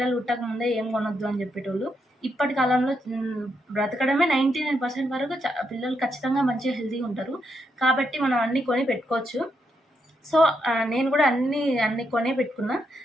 పుట్టక ముందే ఏం కొనొద్దు అని చెప్పేటోళ్ళు. ఇప్పటి కాలంలో బ్రతకడమే 99% వరకు పిల్లలు ఖచ్చితంగా మంచిగా హెల్తీగా ఉంటారు. కాబట్టి మనం అన్నీ కొని పెట్టుకోవచ్చు. సో నేను కూడా అన్నీ కొనే పెట్టుకున్నా.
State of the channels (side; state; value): both; normal; correlation 0.80